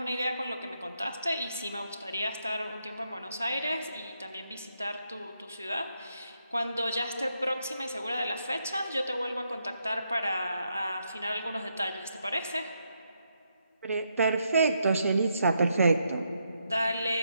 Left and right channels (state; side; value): inverted; both; correlation -0.80